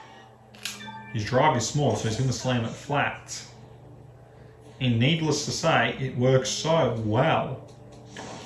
His drive is small, so he's going to slam it flat. And needless to say, it works so well.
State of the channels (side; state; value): both; identical; correlation 1.00